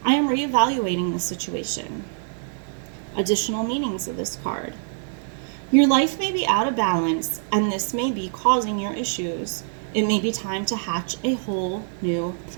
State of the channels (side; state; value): left; silent; digital silence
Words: I am reevaluating the situation. Additional meanings of this card. Your life may be out of balance, and this may be causing your issues. It may be time to hatch a whole new